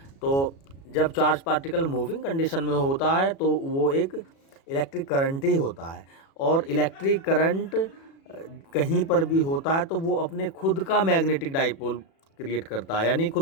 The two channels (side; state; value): right; late; 36 ms